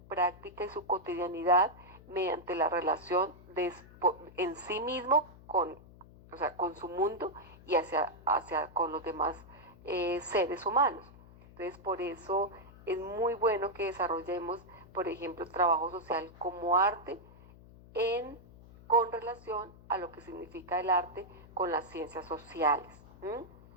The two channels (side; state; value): left; noise; hum, 21 dB below the sound